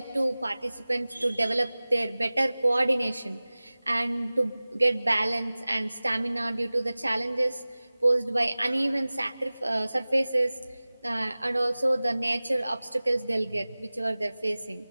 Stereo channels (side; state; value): both; inverted; correlation -0.98